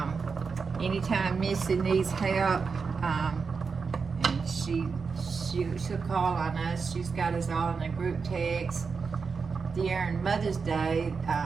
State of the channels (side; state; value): left; quieter; 5.2 dB